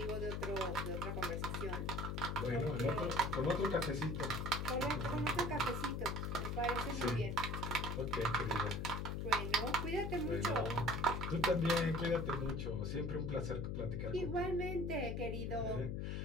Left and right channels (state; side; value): noise; left; hum, 2 dB below the sound